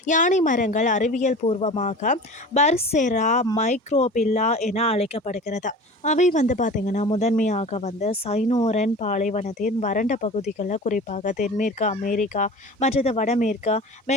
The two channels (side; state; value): both; normal; correlation 0.37